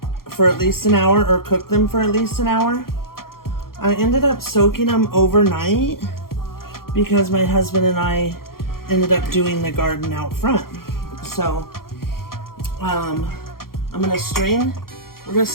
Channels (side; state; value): right; late; 0.92 ms